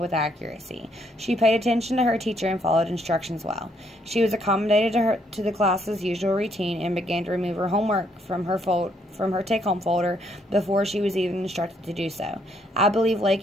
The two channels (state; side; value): normal; both; correlation 0.71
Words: accuracy. She paid attention to her teacher and followed instructions well. She was accommodated to the class's usual routine and began to remove her homework from her take-home folder before she was even instructed to do so. I believe